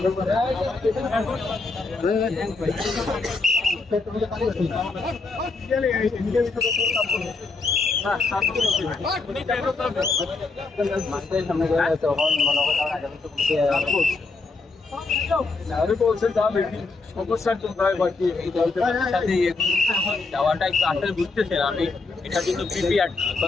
যাওয়াটা একটু আসলে বুঝতেছেন আমি এটা কিন্তু প্রিপেয়ার্ড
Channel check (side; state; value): right; quieter; 3.9 dB